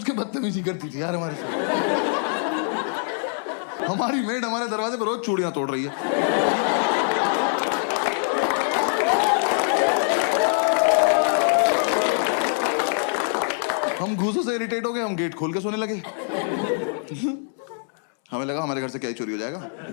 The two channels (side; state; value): right; silent; 63 dB below the other